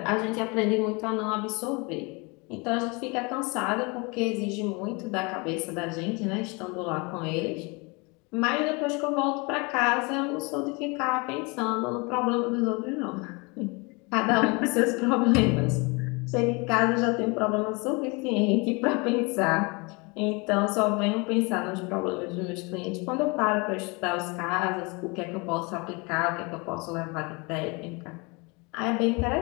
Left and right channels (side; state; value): right; quieter; 28.8 dB